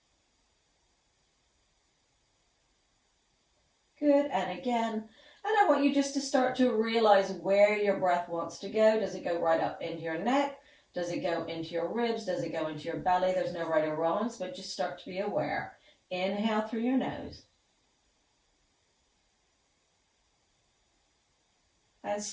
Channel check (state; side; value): identical; both; correlation 1.00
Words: Good, and again. And I want you just to start to realize where your breath wants to go. Does it go right up into your neck? Does it go into your ribs? Does it go into your belly? There's no right or wrongs, but just start to be aware. Inhale through your nose. And